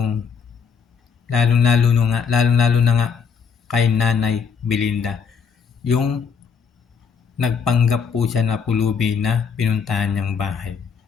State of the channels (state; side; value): quieter; right; 6.3 dB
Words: lalo na nga kay Nanay Belinda. Yung nagpanggap po siya na pulubi na pinuntahan niyang bahay.